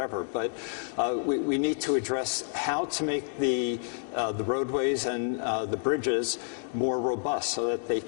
But we need to address how to make the roadways and the bridges more robust, so that they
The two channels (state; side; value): silent; right; digital silence